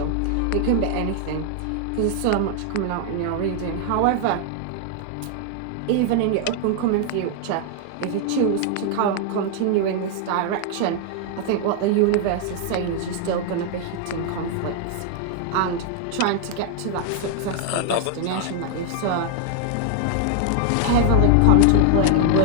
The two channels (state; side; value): different; both; correlation 0.00